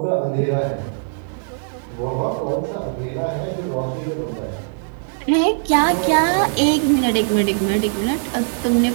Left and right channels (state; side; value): silent; left; 65 dB below the other